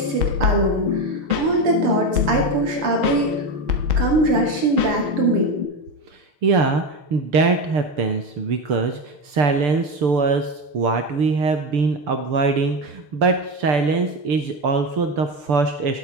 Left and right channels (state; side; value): late; left; 6.8 ms